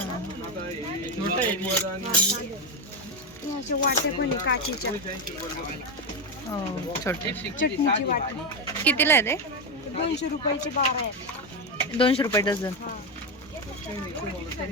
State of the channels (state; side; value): normal; both; correlation 0.10